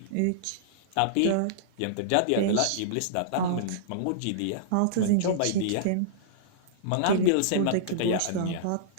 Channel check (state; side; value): different; both; correlation -0.02